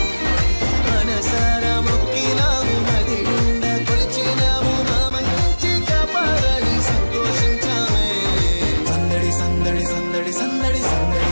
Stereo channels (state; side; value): inverted; both; correlation -1.00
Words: మనసారా మృక్కినాము మది నిండా కొలచినాము మా మంచి కాపాడని సంతోషించామే సందడి సందడి సందడి సందడి సందడి